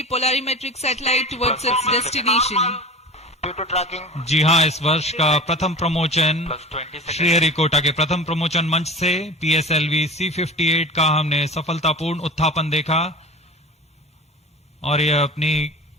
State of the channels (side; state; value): both; normal; correlation 0.35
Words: polarimetric satellite towards its destination. जी हाँ, इस वर्ष का प्रथम प्रमोचन श्रीहरिकोटा के प्रथम प्रमोचन मंच से PSLV C-58 का हमने सफलतापूर्ण उत्थापन देखा और यह अपनी